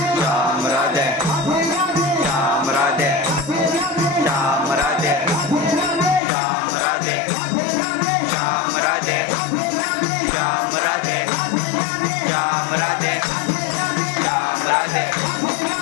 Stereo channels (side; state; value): right; drops out; at 6.2 s